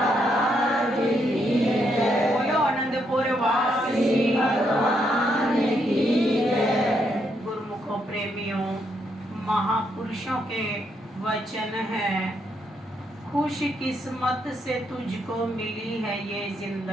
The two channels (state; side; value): normal; both; correlation 0.77